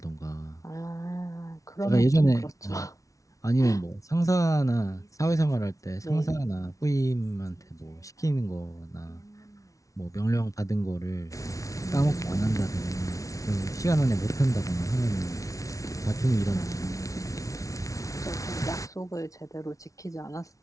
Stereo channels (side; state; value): right; late; 0.16 ms